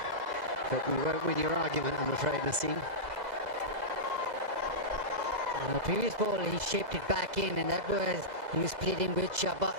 But you won't win your argument, I'm afraid, Nassim. The previous ball, he shaped it back in, and that was, he was pleading with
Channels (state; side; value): late; left; 2.0 ms